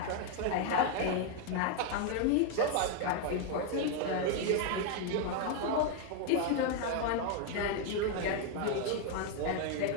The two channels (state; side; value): different; both; correlation 0.00